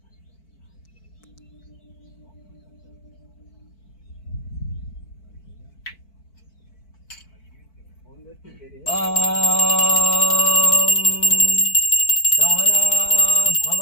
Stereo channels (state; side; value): late; right; 4.5 ms